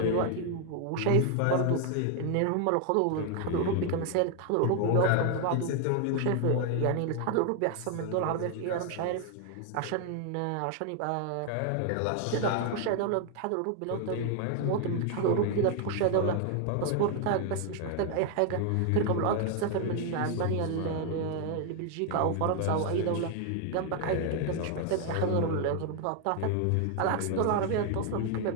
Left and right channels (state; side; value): different; both; correlation 0.00